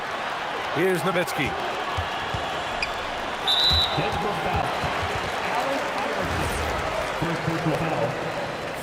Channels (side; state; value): both; identical; correlation 1.00